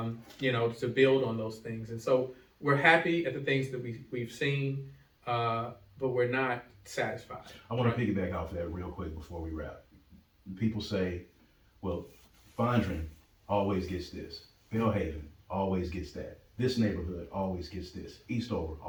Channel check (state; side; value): identical; both; correlation 1.00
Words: build on those things. And so we're happy at the things that we've seen, but we're not satisfied. I want to piggyback off that real quick before we wrap. People say, well, Fondren always gets this. Bellhaven always gets that. This neighborhood always gets this. Eastover